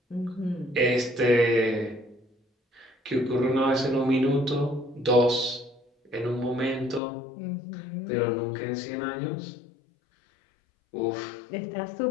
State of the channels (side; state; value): right; drops out; at 7.0 s